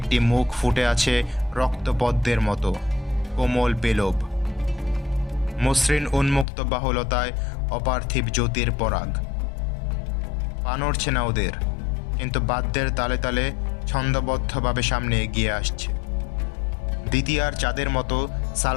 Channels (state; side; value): drops out; right; at 6.5 s